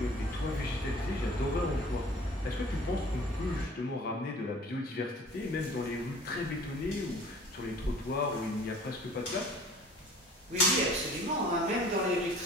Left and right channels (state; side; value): normal; both; correlation 0.48